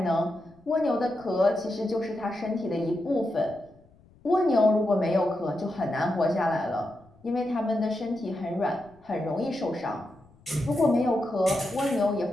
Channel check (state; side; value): noise; left; rumble, 29 dB below the sound